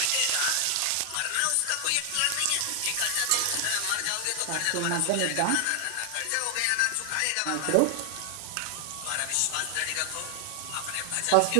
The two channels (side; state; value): both; different; correlation 0.00